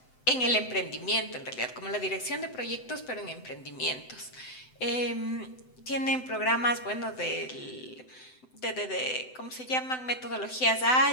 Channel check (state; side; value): late; right; 7.9 ms